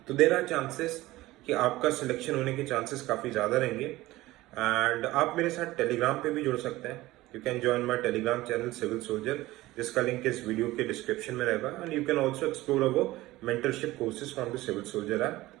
तो देर आर चांसेस कि आपका सिलेक्शन होने के चांसेस काफी ज्यादा रहेंगे। एंड आप मेरे साथ टेलीग्राम पे भी जुड़ सकते हैं। You can join my Telegram channel Civil Soldier, जिसका लिंक इस वीडियो के डिस्क्रिप्शन में रहेगा। And you can also explore our mentorship courses from the Civil Soldier app.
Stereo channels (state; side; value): quieter; left; 17.9 dB